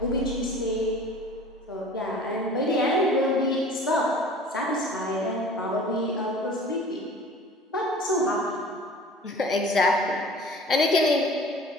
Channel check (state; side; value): normal; both; correlation 0.44